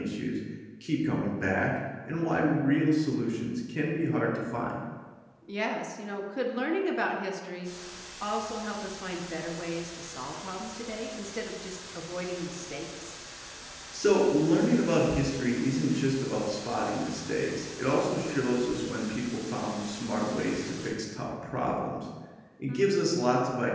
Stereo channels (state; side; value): identical; both; correlation 1.00